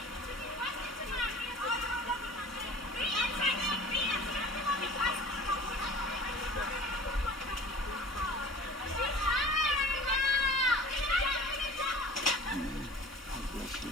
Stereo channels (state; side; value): normal; both; correlation 0.43